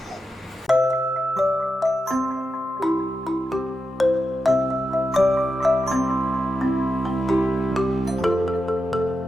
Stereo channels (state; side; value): normal; both; correlation 0.88